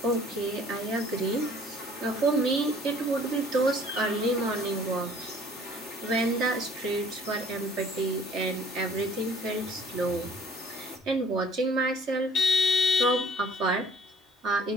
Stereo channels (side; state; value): both; normal; correlation 0.54